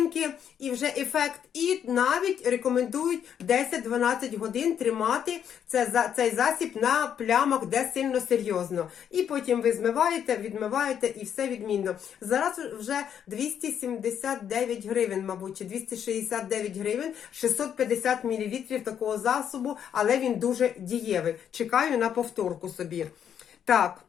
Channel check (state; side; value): quieter; right; 8.8 dB